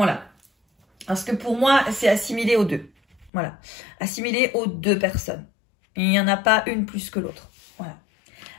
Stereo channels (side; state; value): right; drops out; at 3.3 s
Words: Parce que pour moi, c'est assimilé aux deux. Voilà. Assimilé aux deux personnes. Il n'y en a pas une plus que l'autre. Voilà.